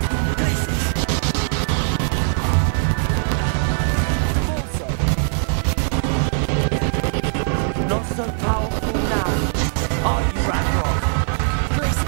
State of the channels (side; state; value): left; silent; digital silence